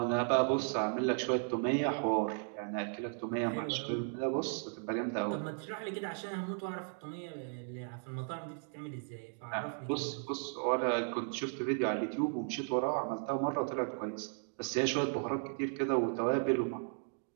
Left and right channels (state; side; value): silent; left; 54 dB below the other